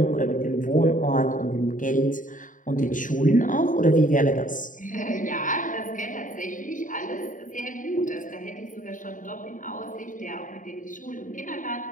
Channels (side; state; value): right; late; 0.38 ms